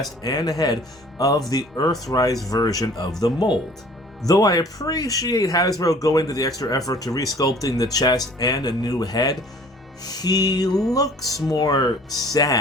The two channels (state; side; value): normal; both; correlation 0.51